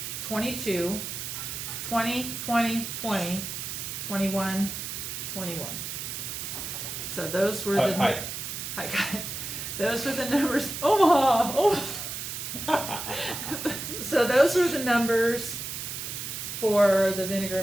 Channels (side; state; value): right; noise; hiss, 6 dB below the sound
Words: 22, 20, 20, 20, 21, 21. So those were the... Hi. Hi, guys. Those were the numbers. Omaha! Omaha! So those were the numbers for the vinegar